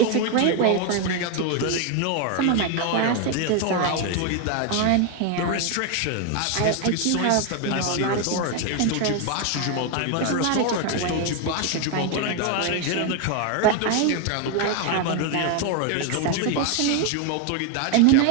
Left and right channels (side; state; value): both; different; correlation 0.01